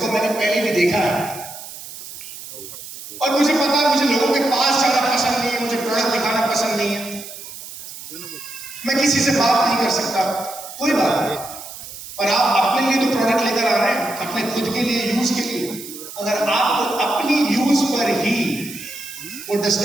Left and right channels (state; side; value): noise; right; hiss, 13 dB below the sound